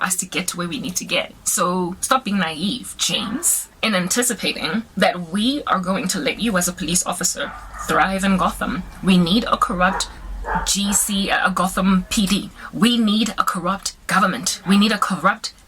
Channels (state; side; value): identical; both; correlation 1.00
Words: us to get to where we need to get. So stop being naive, James, in anticipating that we are going to let you as a police officer thrive in Gotham. We need a corrupt a Gotham PD. We need a corrupt government. We need a corrupt